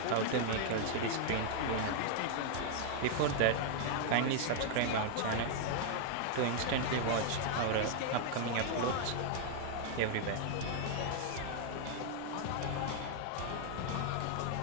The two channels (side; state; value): both; different; correlation 0.00